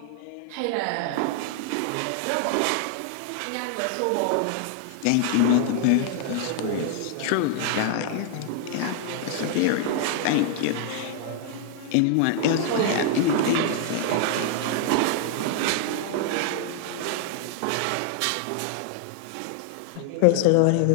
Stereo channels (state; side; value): different; both; correlation 0.00